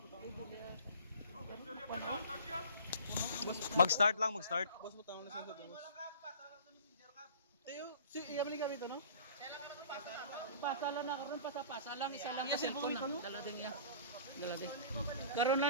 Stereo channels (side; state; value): both; inverted; correlation -0.45